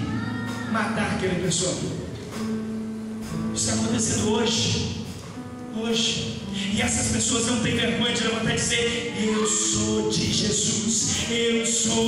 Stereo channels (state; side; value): identical; both; correlation 1.00